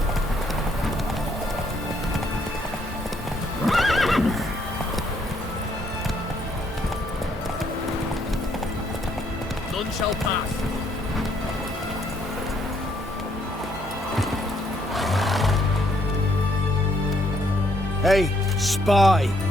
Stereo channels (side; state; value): both; normal; correlation 0.70